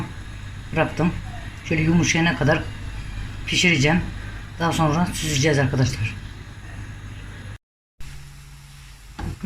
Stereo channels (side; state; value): both; identical; correlation 1.00